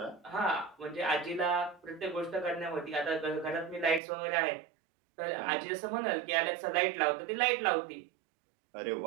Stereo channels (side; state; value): left; drops out; at 4.0 s